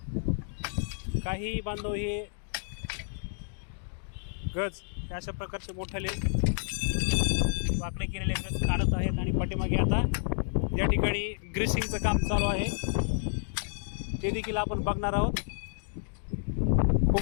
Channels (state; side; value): silent; right; digital silence